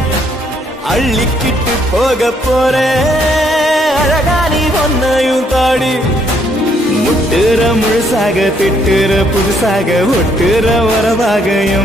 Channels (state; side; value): normal; both; correlation 0.70